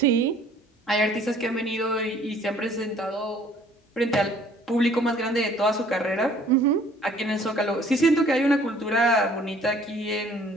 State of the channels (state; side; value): normal; both; correlation 0.56